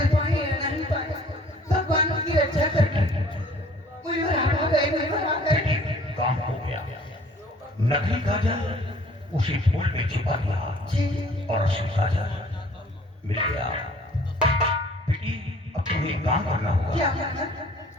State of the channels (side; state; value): both; normal; correlation 0.54